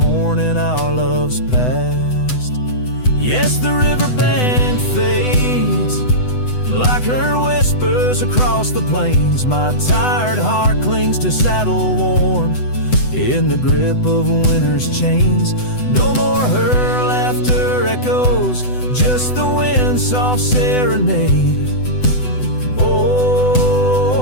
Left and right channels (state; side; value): late; right; 8.0 ms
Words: our love's past. Yes, the river band fades, like her whispers across the plains. My tired heart clings to saddle worn, in the grip of winter's chains. No more her laughter echoes, just the wind's soft serenade.